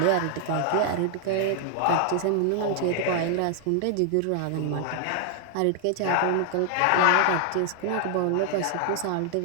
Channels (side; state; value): both; different; correlation 0.00